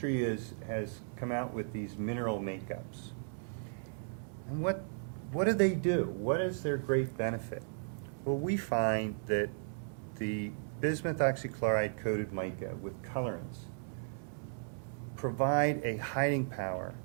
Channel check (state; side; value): silent; left; digital silence